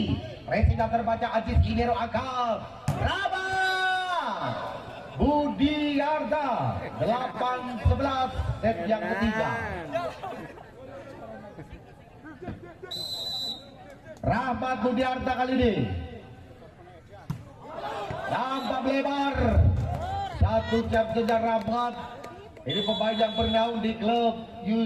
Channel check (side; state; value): both; identical; correlation 1.00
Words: Racingnya terbaca Ajis Inero angkat Rahmat Budiarta. 8-11 set yang ketiga. Rahmat Budiarta kali ini nampak lebar. Satu jam kejar Rahmat. Ini pemain yang bernaung di klub